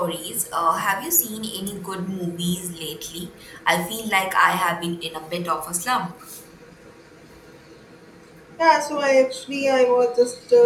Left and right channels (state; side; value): identical; both; correlation 1.00